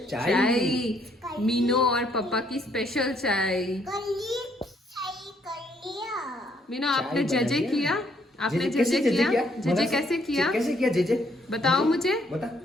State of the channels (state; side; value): normal; both; correlation 0.69